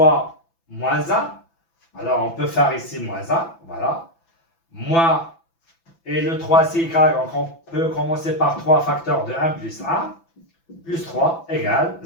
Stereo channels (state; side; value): late; right; 6.0 ms